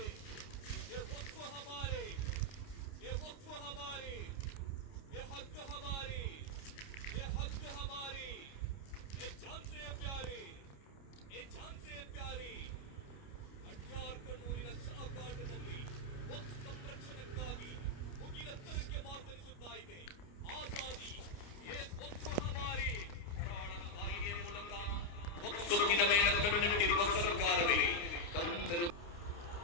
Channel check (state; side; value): late; right; 29 ms